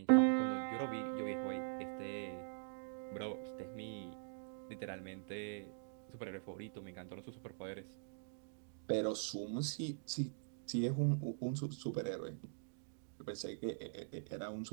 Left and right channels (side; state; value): left; silent; digital silence